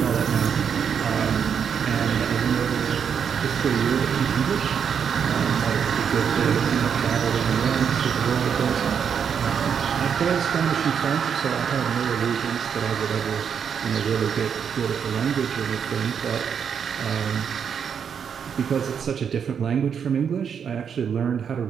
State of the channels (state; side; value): quieter; left; 7.4 dB